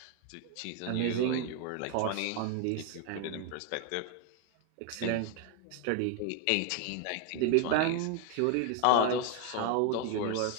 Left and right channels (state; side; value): different; both; correlation 0.01